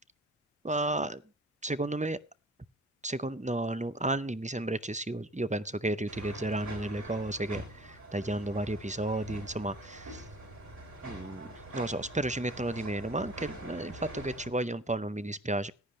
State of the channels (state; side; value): normal; both; correlation 0.46